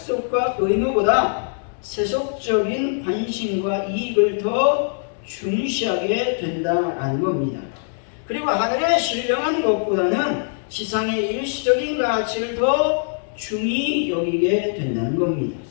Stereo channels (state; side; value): silent; right; digital silence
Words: 의무보다 세속적인 관심과 이익을 더 중시하게 된다라는 겁니다. 그리고 하늘에 신령한 것보다는 지상의 일시적인 가치를 더 중히 여기게 된다는 겁니다.